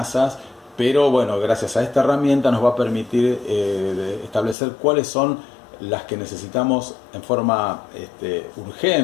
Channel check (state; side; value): drops out; right; at 4.5 s